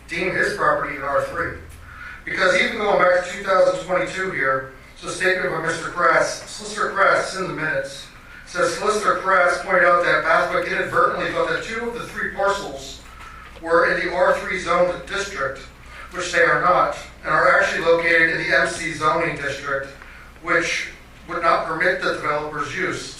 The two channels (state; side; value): identical; both; correlation 1.00